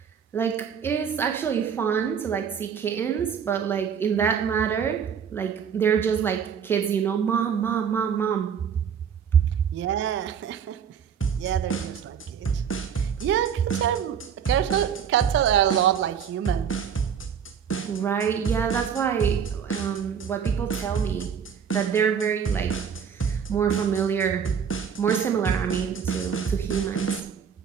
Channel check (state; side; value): quieter; left; 7.5 dB